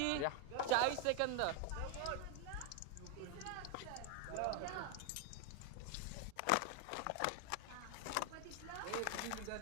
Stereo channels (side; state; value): both; different; correlation 0.01